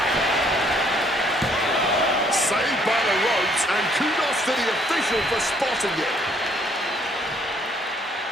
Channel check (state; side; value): normal; both; correlation 0.65